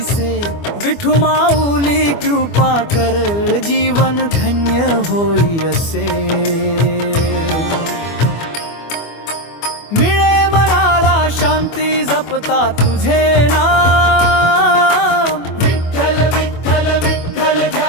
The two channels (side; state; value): right; late; 24 ms